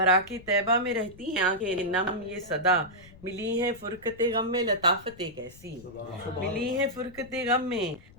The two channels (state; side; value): noise; left; rumble, 21 dB below the sound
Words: طیبہ میں رہتی ہیں آنکھیں نم یہ صدا، ملی ہیں فرقت غم میں لطافتیں کیسی، ملی ہیں فرقت غم میں